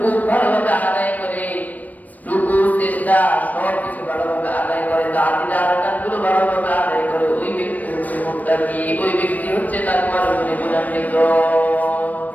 ভালোভাবে আদায় করে, রুকু সিজদা সব কিছু ভালোভাবে আদায় করে, তাআতিল আরকানগুলো ভালোভাবে আদায় করে, ওই ব্যক্তি হচ্ছে মুত্তাকি, ওই ব্যক্তি হচ্ছে তাকওয়ার গুণে গুণান্বিত।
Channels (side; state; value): right; late; 0.077 ms